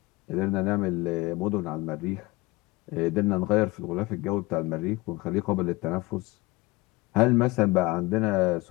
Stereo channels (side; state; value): right; quieter; 21.7 dB